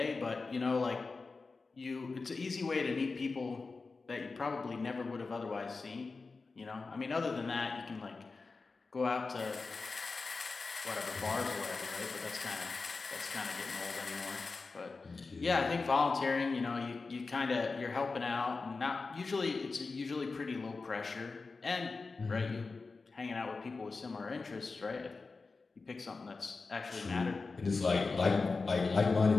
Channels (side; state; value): right; quieter; 4.1 dB